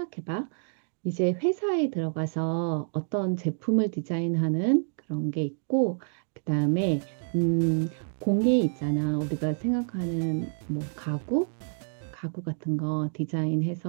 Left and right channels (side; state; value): left; silent; digital silence